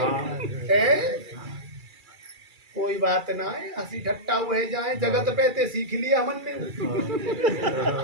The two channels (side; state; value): left; late; 2.3 ms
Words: कोई बात ना है, हंसी ठट्टा हुए जाए, जगत पे ते सीख लिया हमन ने।